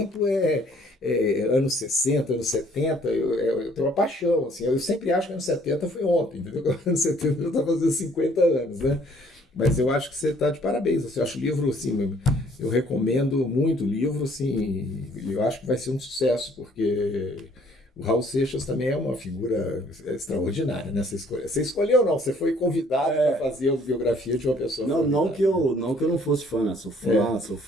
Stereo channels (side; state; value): both; normal; correlation 0.61